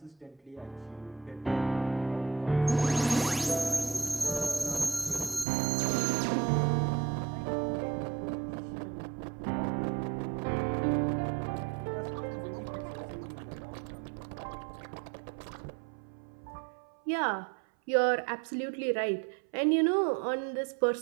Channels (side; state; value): left; drops out; at 5.5 s